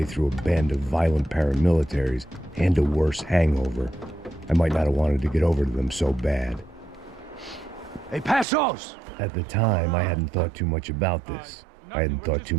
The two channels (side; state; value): left; drops out; at 8.5 s